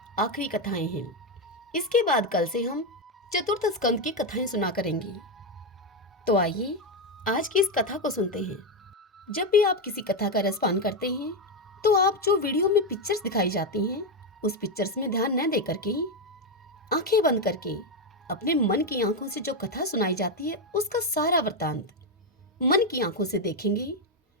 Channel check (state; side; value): normal; both; correlation 0.07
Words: आखिरी कथाएं हैं। इसके बाद कल से हम चतुर्थ स्कंद की कथाएं सुना करेंगे। तो आइए आज की इस कथा को सुनते हैं। जब भी आप किसी कथा का रसपान करते हैं तो आप जो वीडियो में पिक्चर्स दिखाई जाती हैं उस पिक्चर्स में ध्यान न दे करके आंखें बंद करके अपने मन की आंखों से जो कथा सुनाई जाती है उसका सारा वृत्तांत मन की आंखों से देखेंगे